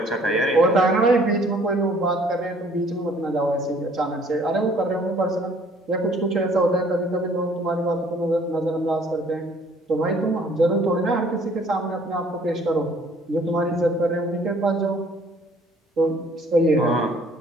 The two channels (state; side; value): normal; both; correlation 0.58